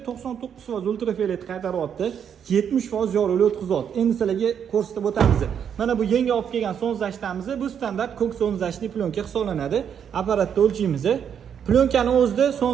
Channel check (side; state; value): left; quieter; 8.2 dB